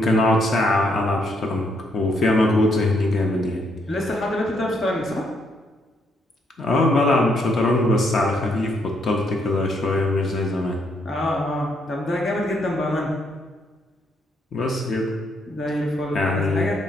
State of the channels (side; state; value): both; normal; correlation 0.74